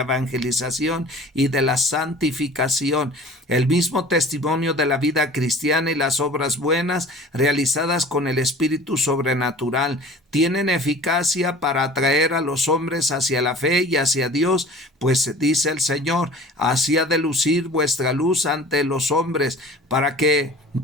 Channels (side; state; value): both; normal; correlation 0.43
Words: evangelización y de la santificación. El mismo testimonio de la vida cristiana y las obras buenas realizadas con el espíritu sobrenatural tienen eficacia para atraer a los hombres hacia la fe y hacia Dios, pues dice el Señor: así ha de lucir vuestra luz ante los hombres, para que,